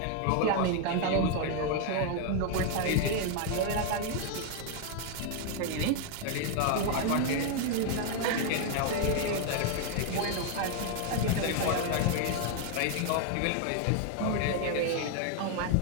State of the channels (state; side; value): different; both; correlation 0.00